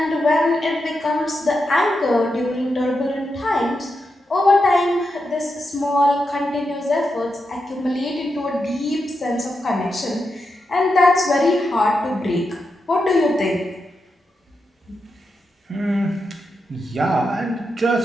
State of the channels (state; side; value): normal; both; correlation 0.86